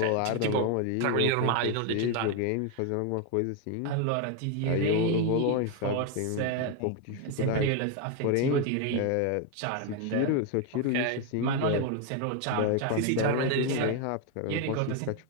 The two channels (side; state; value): both; different; correlation 0.01